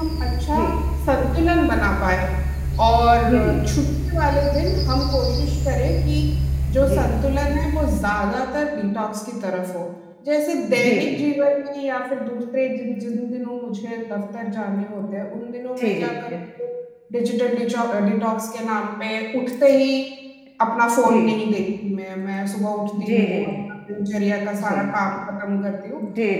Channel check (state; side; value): identical; both; correlation 1.00